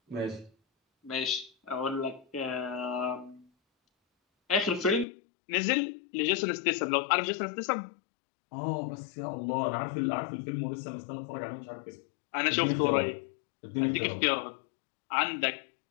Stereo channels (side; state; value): right; drops out; at 5.1 s